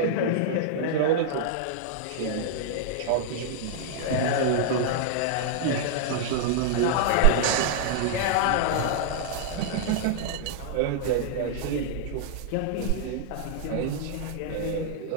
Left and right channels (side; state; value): both; different; correlation -0.01